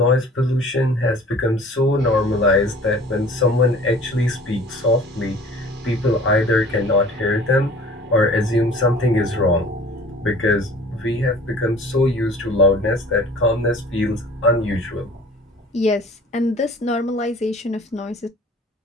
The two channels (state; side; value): normal; both; correlation 0.47